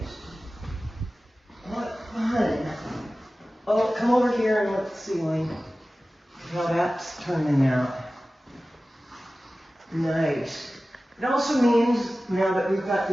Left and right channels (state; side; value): normal; both; correlation 0.96